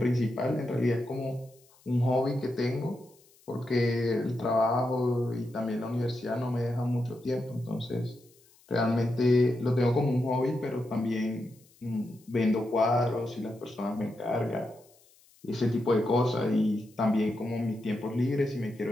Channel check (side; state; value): left; noise; hiss, 30 dB below the sound